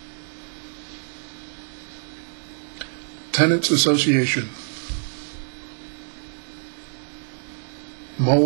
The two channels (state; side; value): silent; left; digital silence